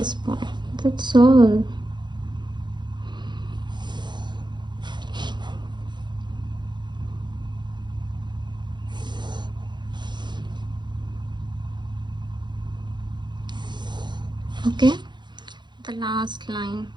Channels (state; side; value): late; left; 0.22 ms